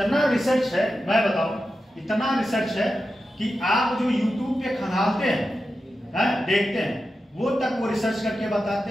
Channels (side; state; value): both; normal; correlation 0.91